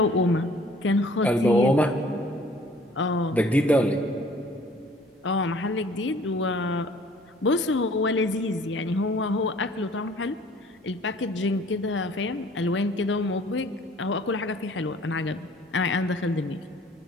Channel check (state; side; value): normal; both; correlation 0.54